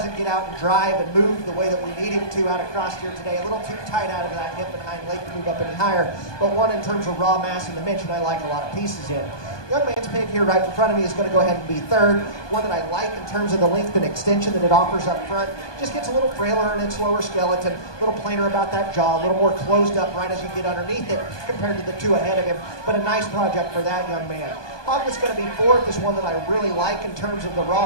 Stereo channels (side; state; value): right; late; 1.2 ms